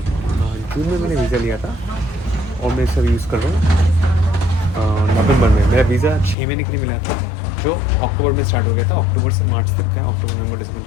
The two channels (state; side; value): drops out; right; at 6.4 s